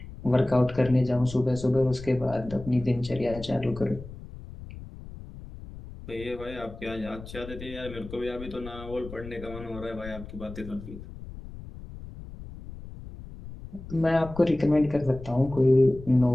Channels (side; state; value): left; noise; rumble, 14 dB below the sound